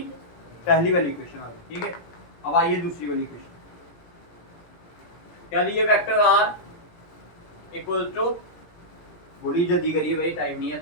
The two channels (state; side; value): late; right; 17 ms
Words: पहली वाली इक्वेशन आ गई, ठीक है। अब आइए दूसरी वाली इक्वेशन, क्या दी है, वेक्टर आर इक्वल टू, बोली जल्दी करिए भाई, टाइम नहीं है